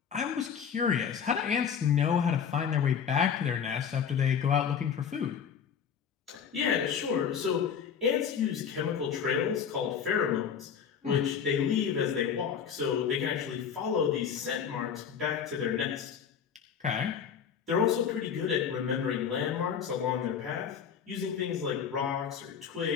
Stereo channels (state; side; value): quieter; right; 7.4 dB